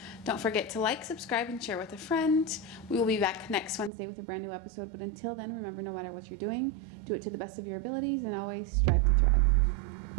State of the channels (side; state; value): left; drops out; at 3.9 s